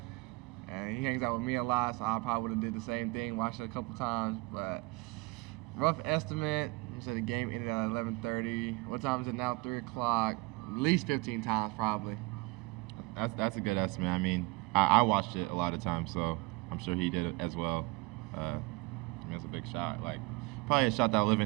and he hangs out with me a lot, so I probably would have did the same thing, watched it a couple times. But rough estimate, so the game ended at 11:30. What time is it now? 3 o'clock. At least 15 times, probably. That's a good estimate. I mean, I watched it a lot of times, so I'm sure he did it as well. That's a big shot. Like, probably a shot that'll live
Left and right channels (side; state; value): left; quieter; 24.7 dB